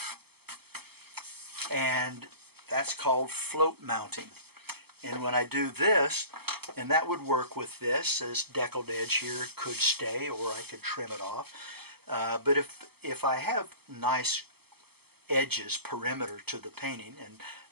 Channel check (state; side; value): late; left; 0.96 ms